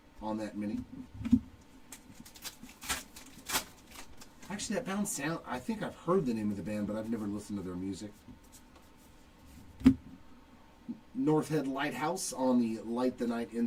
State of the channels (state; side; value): identical; both; correlation 1.00